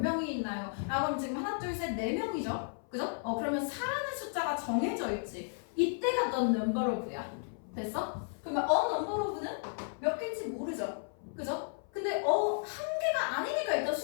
있나요? 그럼 지금 하나, 둘, 셋, 네 명이죠? 그죠? 그러면 사라는 숫자가 정해져 있지. 이때가 the number of야. 됐어? 그러면 number of는 몇 개인지 모르죠? 그죠? 근데 한 개가 아니니까 일단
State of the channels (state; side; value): silent; right; 55 dB below the other